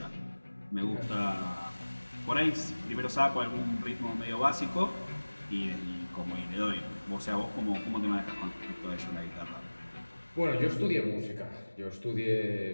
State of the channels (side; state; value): both; inverted; correlation -1.00